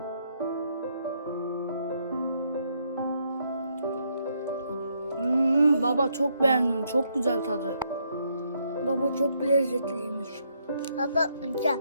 Baba çok beğendim. Çok güzel tadı. Baba çok lezzetliymiş. Baba güzel.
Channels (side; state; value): both; inverted; correlation -0.74